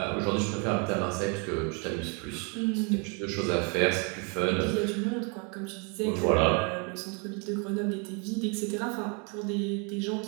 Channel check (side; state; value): left; quieter; 35.2 dB